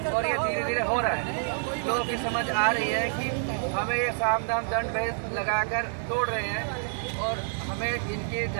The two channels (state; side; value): silent; left; digital silence